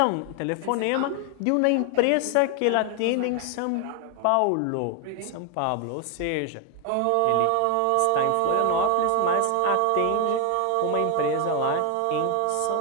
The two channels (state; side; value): different; both; correlation 0.00